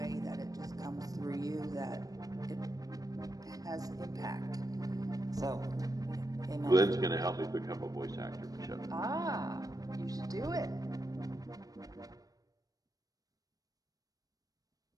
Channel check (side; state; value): left; late; 0.18 ms